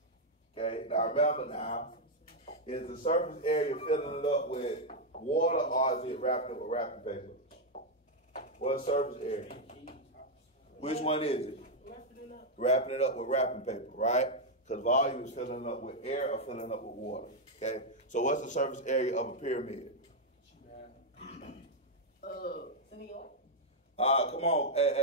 Okay, now remember now, is the surface area filling it up with water or is it wrapping it with wrapping paper? What surface area? Which one is it? Wrapping it up with wrapping paper, right? Because volume is filling it up with air or filling it up with water. Okay? So what's the surface area of a pyramid? Come on,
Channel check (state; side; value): normal; both; correlation -0.01